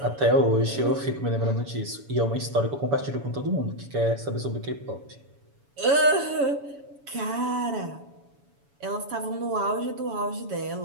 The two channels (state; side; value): late; left; 7.1 ms